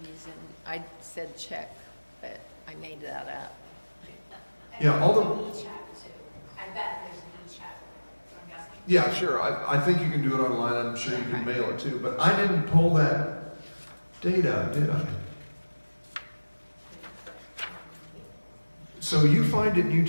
I said check, but I made that up. Yeah, all the. E-chat too. I bet there's an e-chat, I'm guessing. Yeah, sure. I think you can do it online. I'm sure you can mail it too. But I didn't pull that data, did I? So you find it and you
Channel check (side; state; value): both; inverted; correlation -1.00